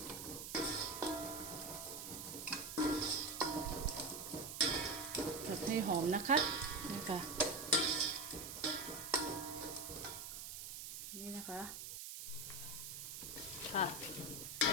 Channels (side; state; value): right; noise; hiss, 8 dB below the sound